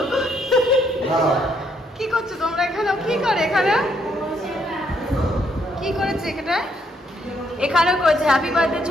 কি করছো তোমরা এখানে? কি করে এখানে? কি করেছে এখানে? এখানেও করেছে হ্যাপি বার্থডে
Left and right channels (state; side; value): normal; both; correlation 0.72